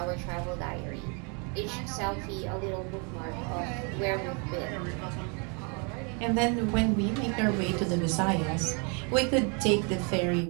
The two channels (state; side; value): quieter; left; 35.0 dB